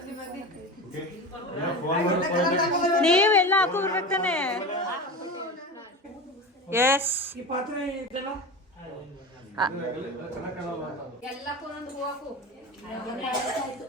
ನೀವೆಲ್ಲ ಹಾಕೋಬಿಡ್ಬೇಕು ತಾನೆ. ಎಸ್ ಈ ಪಾತ್ರೆ ಇದೆಲ್ಲ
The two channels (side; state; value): both; normal; correlation 0.27